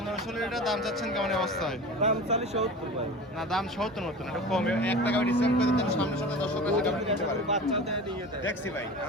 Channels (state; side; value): normal; both; correlation 0.34